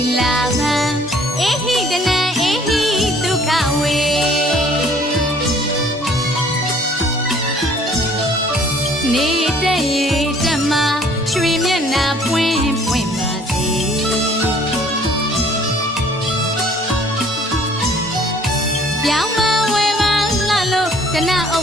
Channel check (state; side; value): normal; both; correlation 0.57